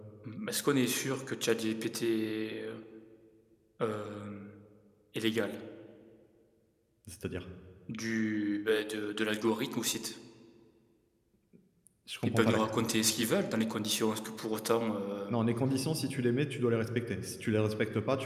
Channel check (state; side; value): identical; both; correlation 1.00